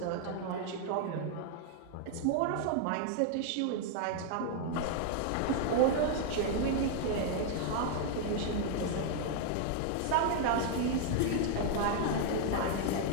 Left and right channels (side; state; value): both; different; correlation 0.00